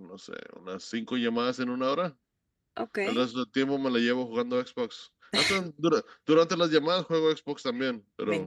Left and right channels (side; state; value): both; identical; correlation 1.00